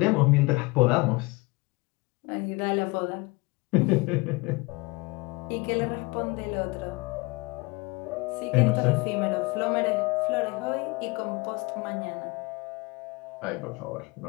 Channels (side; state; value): right; quieter; 25.3 dB